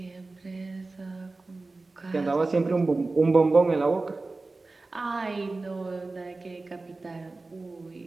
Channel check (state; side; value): quieter; left; 3.4 dB